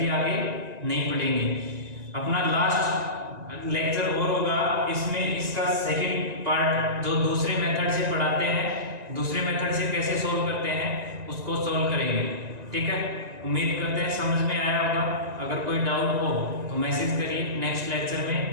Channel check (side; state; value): left; late; 1.9 ms